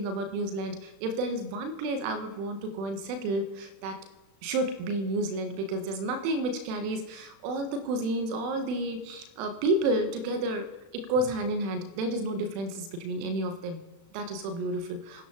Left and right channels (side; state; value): left; late; 36 ms